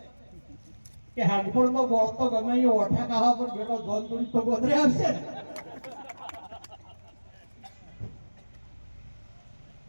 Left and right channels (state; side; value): inverted; both; correlation -1.00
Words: કે હાડફોડનો ગોળતો ગમે એ ઓઠા કાહા પર બેઠો ધોન દોડી તો ગોદરે આવશે.